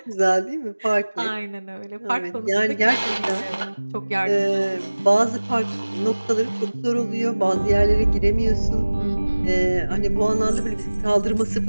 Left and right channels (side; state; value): both; inverted; correlation -1.00